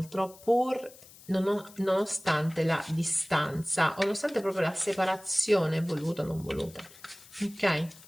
pur nonostante la distanza, o nonostante proprio la separazione voluta o non voluta, ok?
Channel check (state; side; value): noise; left; hiss, 22 dB below the sound